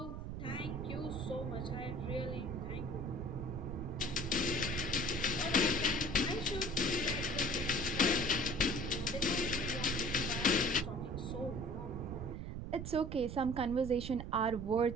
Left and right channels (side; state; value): right; noise; rumble, 6 dB below the sound